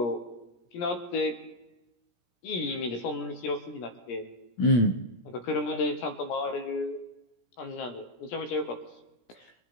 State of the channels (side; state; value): right; late; 17 ms